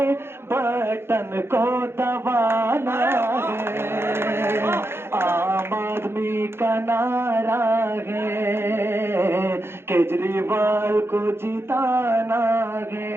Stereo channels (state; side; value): late; left; 0.12 ms